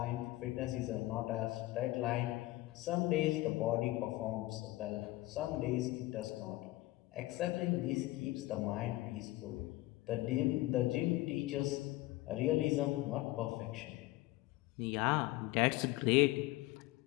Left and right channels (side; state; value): right; quieter; 18.4 dB